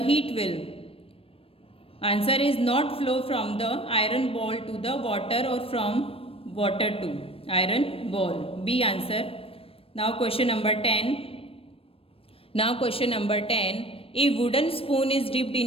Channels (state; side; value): late; right; 0.28 ms